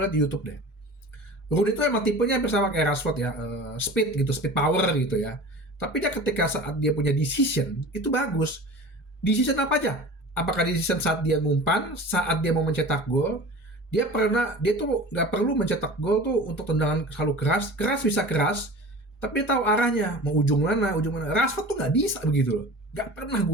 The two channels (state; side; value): normal; both; correlation 0.37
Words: lihat di YouTube deh. Rooney itu emang tipenya hampir sama kayak Rashford ya, speed gitu, speed power gitu ya. Tapi dia ketika saat dia punya decision itu bagus. Decision apa aja? Apakah decision saat dia ngumpan, saat dia mau mencetak gol, dia tuh nggak perlu mencetak gol tuh untuk tendangan selalu keras, keras bisa keras, tapi dia tahu arahnya mau ujung mana, ujung mana. Rashford tuh nggak bisa begitu loh, nggak pernah